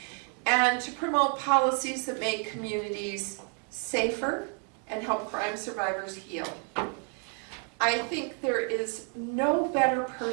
and to promote policies that make communities safer and help crime survivors heal. I think there is no better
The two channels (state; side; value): quieter; left; 39.8 dB